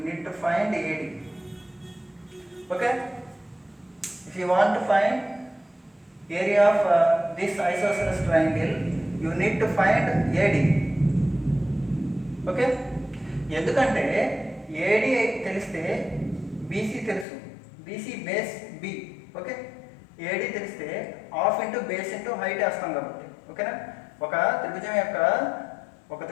need to find AD. Okay. If you want to find area of this isosceles triangle you need to find AD. Okay. ఎందుకంటే AD తెలిస్తే BC తెలుసు, BC base B. Okay. AD తెలిస్తే half into base into height వేస్తాం కాబట్టి. ఓకేనా? ఒక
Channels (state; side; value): drops out; right; at 17.2 s